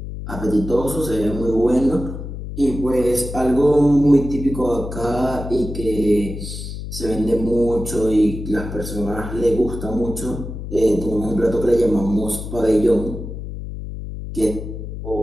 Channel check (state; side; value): noise; left; hum, 8 dB below the sound